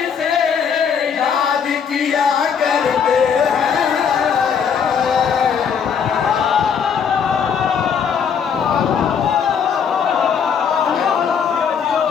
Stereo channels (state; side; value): quieter; right; 7.1 dB